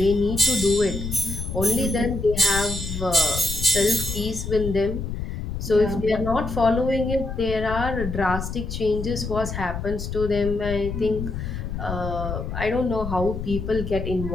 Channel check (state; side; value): noise; left; rumble, 5 dB below the sound